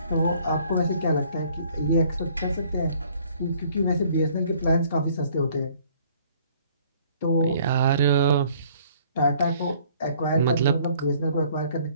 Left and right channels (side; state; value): both; inverted; correlation -0.59